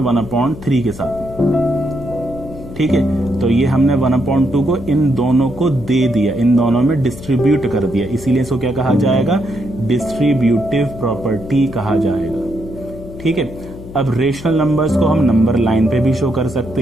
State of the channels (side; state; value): left; noise; hum, 14 dB below the sound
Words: के साथ में। ठीक है, तो ये हमने 1/2 को इन दोनों को दे दिया, इन दोनों में डिस्ट्रीब्यूट कर दिया, इसीलिए इसको क्या कहा जाएगा, डिस्ट्रीब्यूटिव प्रॉपर्टी कहा जाएगा। ठीक है, अब रेशनल नंबर्स को हम नंबर लाइन पे भी शो कर सकते